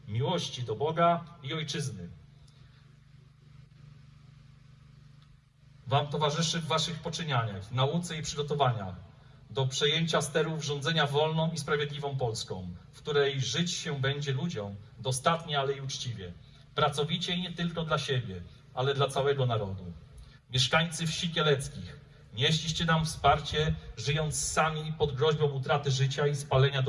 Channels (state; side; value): identical; both; correlation 1.00